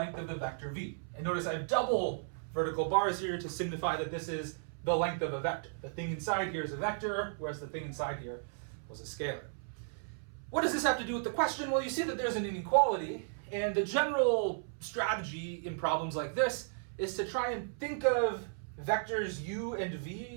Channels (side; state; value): left; silent; 55 dB below the other